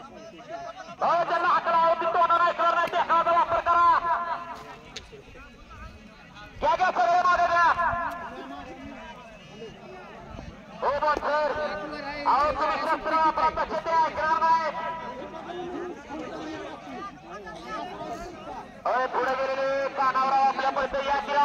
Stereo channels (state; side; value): identical; both; correlation 1.00